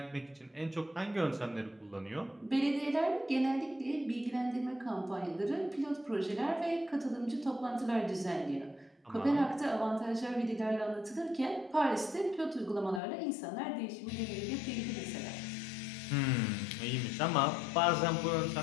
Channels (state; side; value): drops out; right; at 13.0 s